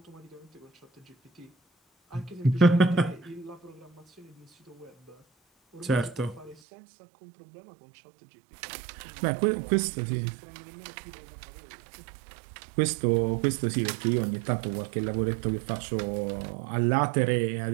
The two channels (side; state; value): left; drops out; at 6.6 s